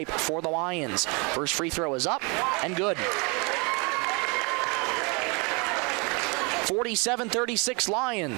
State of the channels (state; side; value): quieter; left; 30.6 dB